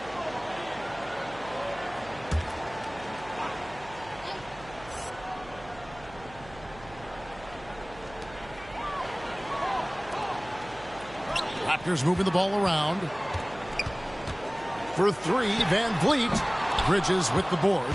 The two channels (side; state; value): right; noise; hum, 19 dB below the sound